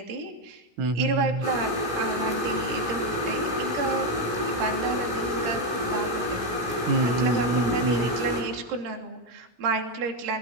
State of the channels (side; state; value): left; late; 16 ms